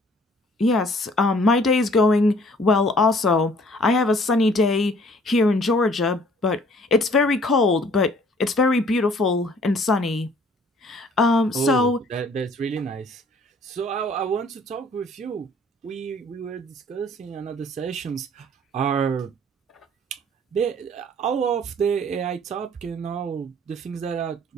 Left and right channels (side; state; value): both; normal; correlation 0.57